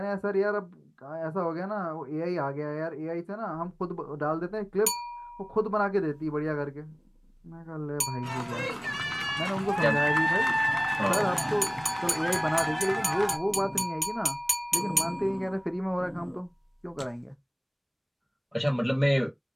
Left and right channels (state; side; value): identical; both; correlation 1.00